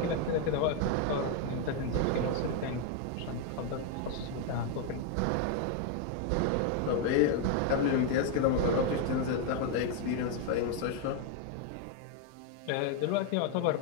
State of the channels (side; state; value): both; different; correlation 0.01